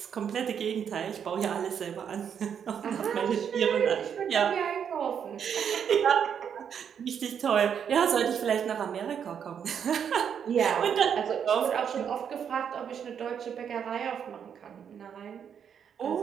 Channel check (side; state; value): left; quieter; 7.9 dB